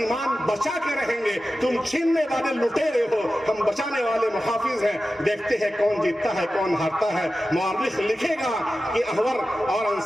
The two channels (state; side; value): normal; both; correlation 0.94